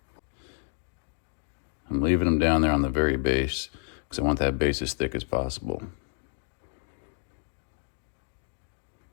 I'm leaving them down there on the very base because I want that base as thick as possible.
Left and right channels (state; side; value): silent; right; 58 dB below the other